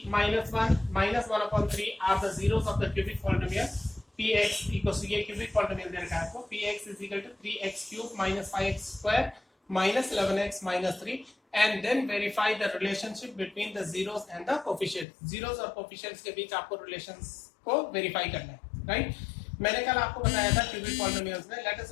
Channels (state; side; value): drops out; right; at 15.1 s